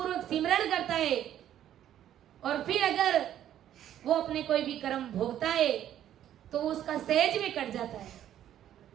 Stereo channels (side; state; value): left; quieter; 11.2 dB